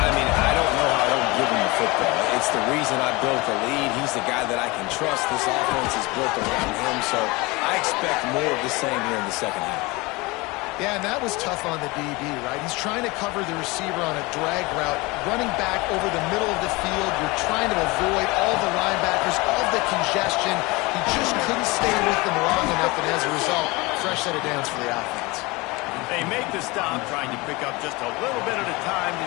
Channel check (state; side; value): quieter; right; 24.0 dB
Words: I mean, I don't know how I don't give him the football. It's the reason I built the lead. He's the guy that I can trust. This offense is built around him, so I expect more of the same here in the second half. Yeah, and that was tough on the DB, right? He's trying to cover the receiver on a drag route, running back over the middle of the field. You're trying to avoid all the linebackers, all the congestion. He just couldn't stay with them long enough, and as a result, fresh set of downs for the offense. They make the stop, trying to pick up just a little bit at a time to